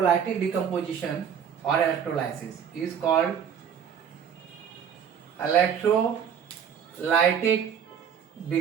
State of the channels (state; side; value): quieter; left; 8.0 dB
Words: decomposition. or electrolysis is called electrolytic